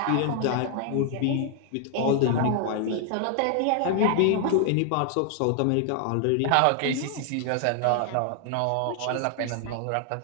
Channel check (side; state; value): both; different; correlation 0.00